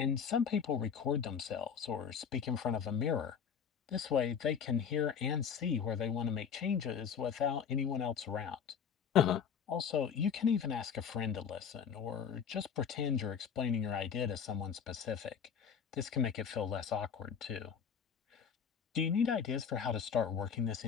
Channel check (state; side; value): quieter; right; 7.2 dB